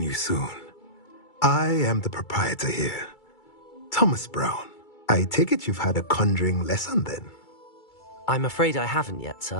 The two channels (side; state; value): right; late; 2.3 ms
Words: you soon. I am the proprietor here, Thomas Brown. I take it you've had a conjuring lesson then? I'm afraid I haven't yet,